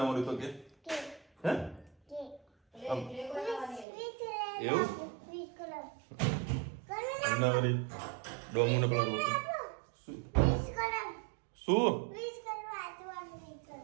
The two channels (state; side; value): drops out; left; at 3.9 s